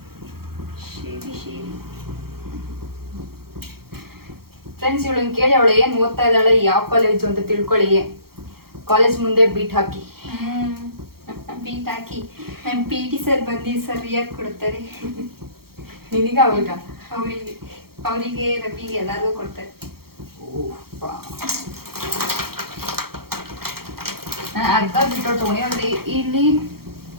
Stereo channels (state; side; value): late; left; 0.94 ms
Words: ಫ್ರೆಂಡ್ಸ್, ಇವಳನ್ನ ಕೇಳಿ ಅವಳು ಏನು ಓದ್ತಾ ಇದ್ದಾಳೆ, ಯಾವ ಕಾಲೇಜು ಅಂತ ತಿಳ್ಕೊಳ್ಳಿ. ಕಾಲೇಜ್ ಮುಂದೆ ಬೀಟ್ ಹಾಕಿ ಬೀಟ್ ಹಾಕಿ ನಮ್ಮ PT ಸರ್ ಬಂದು ಸರಿಯಾಗಿ ಕೊಡ್ತಾರೆ. ನಿನಗ ಅವಾಗ ಅವರಿಗೆ ರವಿಗೆ ಎಲ್ಲರಿಗೂ ಕೊಡ್ತಾರೆ. ನಾನು ಅರ್ಧ ಬಿಟ್ಟು ತೊಗೊಂಡು ಅಂದ್ರೆ ಇಲ್ಲಿ